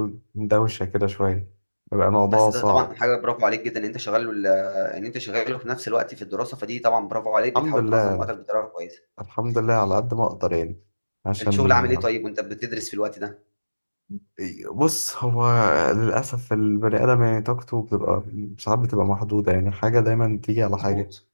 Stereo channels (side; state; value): both; inverted; correlation -1.00